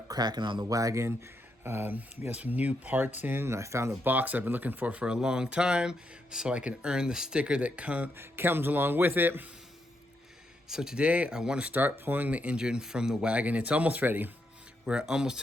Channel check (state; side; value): normal; both; correlation 0.80